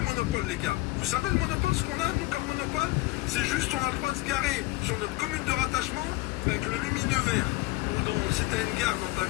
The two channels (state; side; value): quieter; right; 20.4 dB